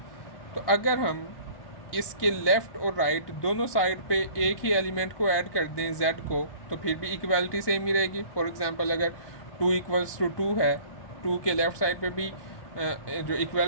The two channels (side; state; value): right; late; 1.2 ms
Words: तो अगर हम इसके लेफ़्ट और राइट दोनों साइड पे एक ही एलिमेंट को ऐड कर दें z को, तो फिर भी इक्वालिटी सेम ही रहेगी। फॉर एग्जांपल अगर 2 इक्वल्स टू 2 है, 2 के लेफ़्ट साइड पे भी जो